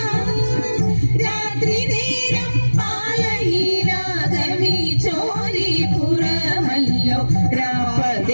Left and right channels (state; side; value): inverted; both; correlation -1.00